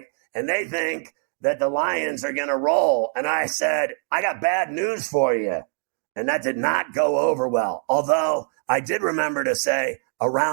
and they think that the Lions are going to roll. And I said, I got bad news for you. And that did not go over well. Although I did remember to say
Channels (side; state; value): left; silent; digital silence